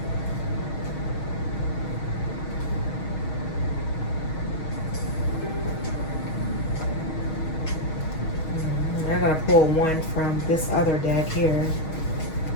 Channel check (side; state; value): right; late; 6.3 ms